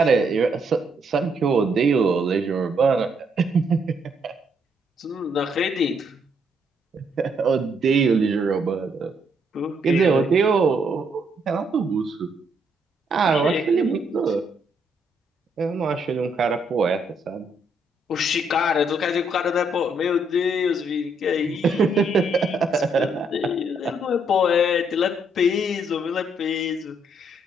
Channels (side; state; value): both; normal; correlation 0.72